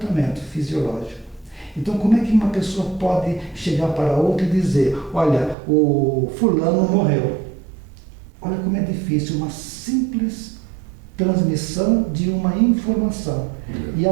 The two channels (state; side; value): drops out; left; at 5.6 s